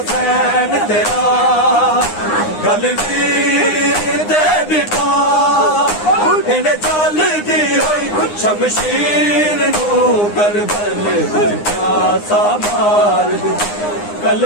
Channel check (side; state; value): right; late; 9.7 ms